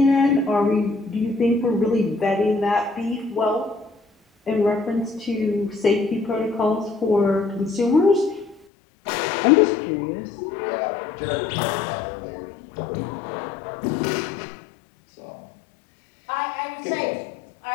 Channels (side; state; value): right; drops out; at 8.7 s